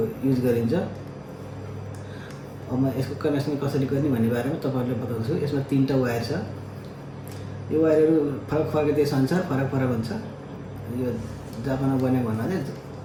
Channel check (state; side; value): identical; both; correlation 1.00